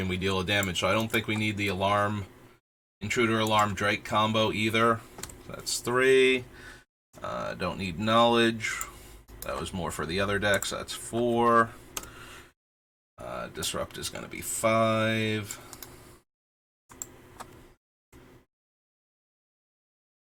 and we deal a damage. So I don't think we need the Intruder Alarm Drake combo either. That's 3. Don't need Knowledge. That was more for the other decks. That's 4. Disrupt is going to be 5.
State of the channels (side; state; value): both; identical; correlation 1.00